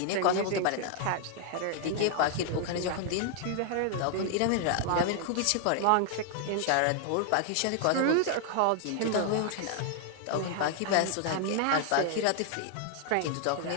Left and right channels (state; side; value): different; both; correlation 0.00